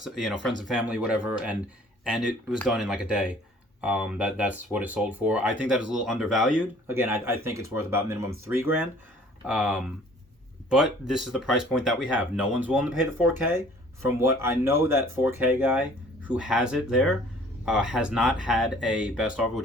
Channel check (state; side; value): normal; both; correlation 0.53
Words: friends and family, whatever, and it was done in like a day. That's what it sold for. I think that is a little undervalued. Again, I think it's worth about minimum $3,000. But this is the price point that we have. No one's willing to pay the 4K. From what I know, that 4K guy who has it there has not had a best offer